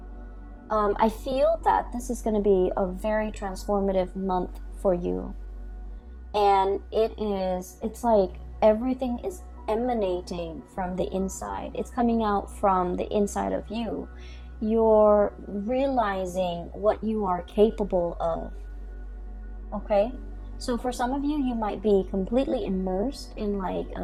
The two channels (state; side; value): identical; both; correlation 1.00